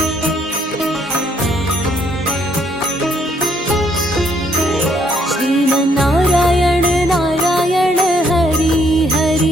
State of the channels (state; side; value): normal; both; correlation 0.69